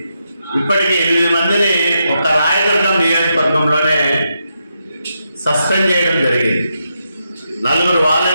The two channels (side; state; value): both; inverted; correlation -0.83